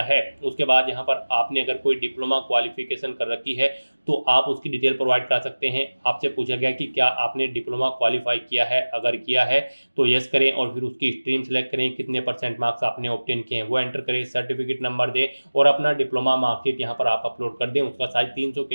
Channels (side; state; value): both; inverted; correlation -1.00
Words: है। उसके बाद यहाँ पर आपने अगर कोई डिप्लोमा क्वालिफिकेशन कर रखी है तो आप उसकी डिटेल प्रोवाइड कर सकते हैं। आपसे पूछा गया कि क्या आपने डिप्लोमा क्वालिफाई किया है, अगर किया है तो यस करें और फिर उसकी स्ट्रीम सेलेक्ट करें, कितने % मार्क्स आपने ऑब्टेन किए हैं वो एंटर करें, सर्टिफिकेट नंबर दें और अपना डिप्लोमा मार्कशीट यहाँ पर आप अपलोड कर दें। उसका साइज 300